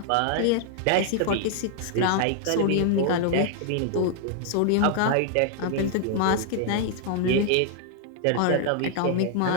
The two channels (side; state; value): both; different; correlation 0.00